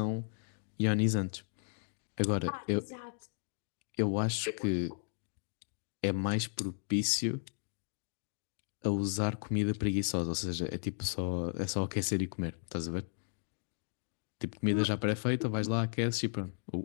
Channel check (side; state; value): right; silent; digital silence